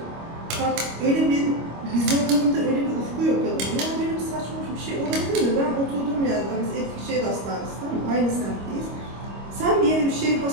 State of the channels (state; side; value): late; left; 25 ms